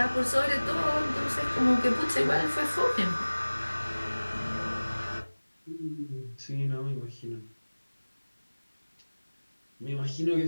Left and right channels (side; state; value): both; inverted; correlation -1.00